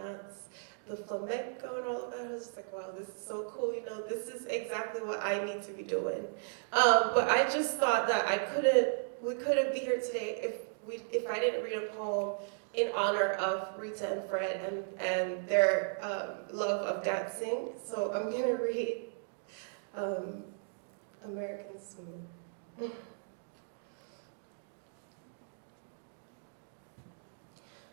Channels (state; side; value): silent; left; digital silence